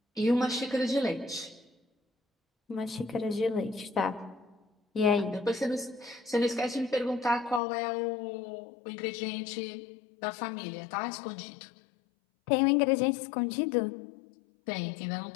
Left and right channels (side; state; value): right; drops out; at 7.6 s